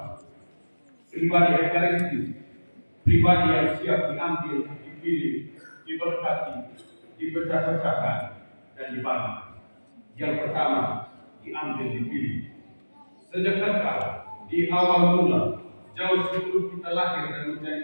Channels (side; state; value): both; inverted; correlation -1.00